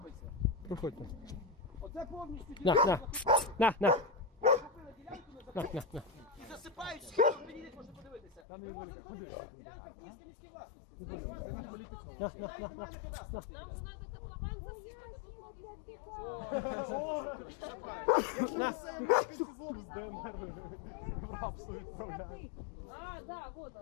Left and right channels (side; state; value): right; drops out; at 8.4 s